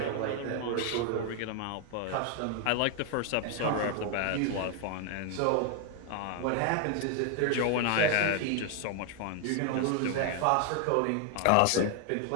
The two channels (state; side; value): different; both; correlation 0.00